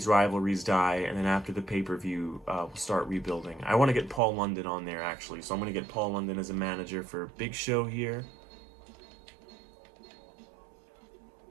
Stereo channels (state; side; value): drops out; left; at 4.2 s